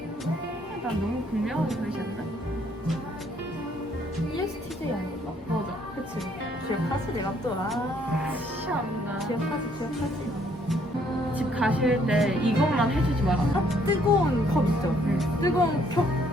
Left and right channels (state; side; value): normal; both; correlation 0.66